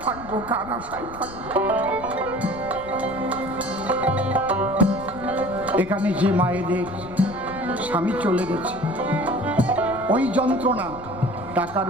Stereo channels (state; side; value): noise; left; rumble, 17 dB below the sound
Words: থাকবো, কার আশায় থাকবো? এখানে যে মায়েদের স্বামী চলে গেছে, ওই যন্ত্রণা টাকার